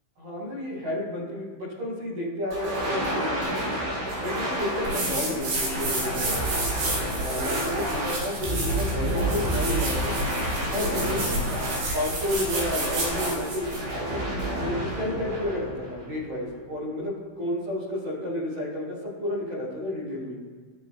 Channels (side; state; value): left; late; 15 ms